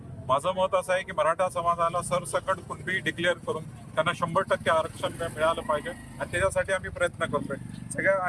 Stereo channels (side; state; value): both; identical; correlation 1.00